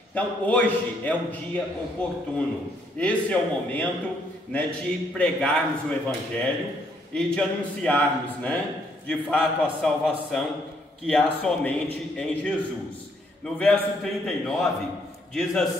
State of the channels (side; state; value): both; normal; correlation 0.70